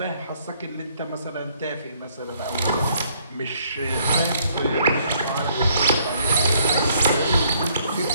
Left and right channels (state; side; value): inverted; both; correlation -0.66